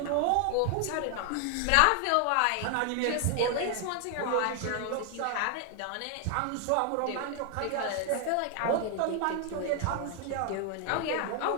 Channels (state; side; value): different; both; correlation 0.00